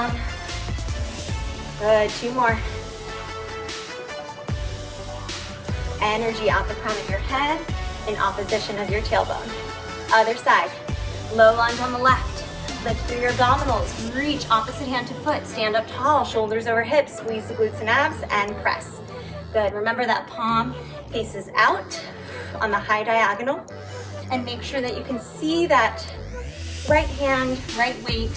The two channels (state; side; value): identical; both; correlation 1.00